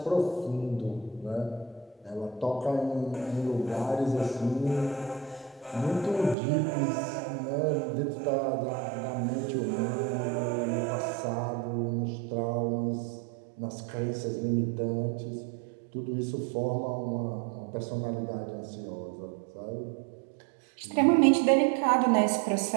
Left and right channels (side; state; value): left; drops out; at 6.4 s